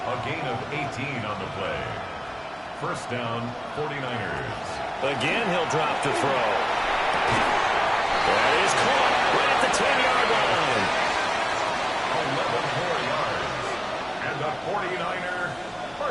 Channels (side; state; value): both; identical; correlation 1.00